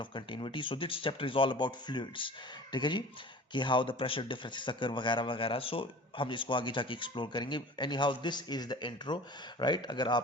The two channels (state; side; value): normal; both; correlation 0.41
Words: of continuity. So this chapter is all about fluids. ठीक है जी, कि हाउ द प्रेशर डिफरेंसेस अकर वगैरह वगैरह। सो हम इसको आगे जाके एक्सप्लोर करेंगे। Any how, this is the intro, right? अगर